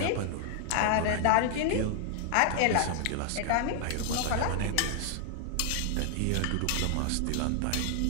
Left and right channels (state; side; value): different; both; correlation 0.00